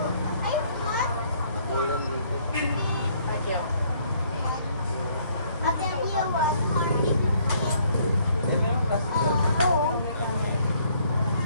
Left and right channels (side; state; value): both; inverted; correlation -0.64